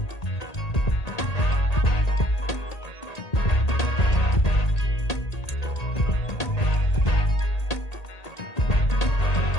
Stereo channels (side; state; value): right; late; 1.8 ms